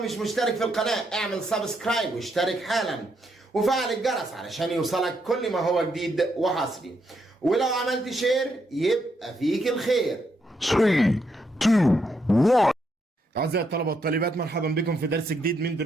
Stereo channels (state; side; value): normal; both; correlation 0.78